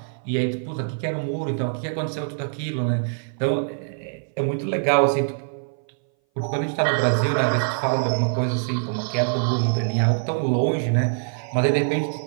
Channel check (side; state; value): left; silent; 59 dB below the other